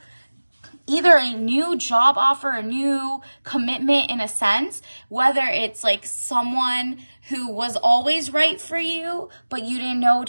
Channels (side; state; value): both; inverted; correlation -1.00